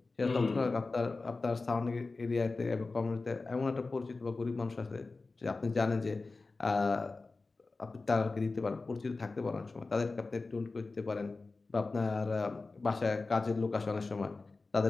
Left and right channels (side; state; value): right; quieter; 3.7 dB